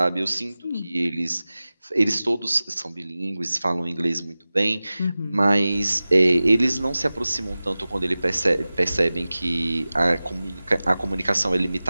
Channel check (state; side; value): inverted; both; correlation -0.97